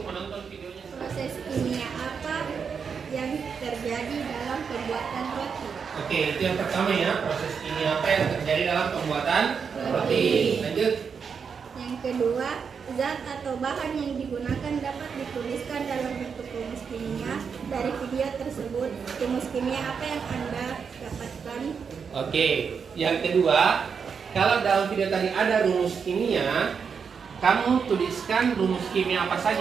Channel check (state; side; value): quieter; left; 6.2 dB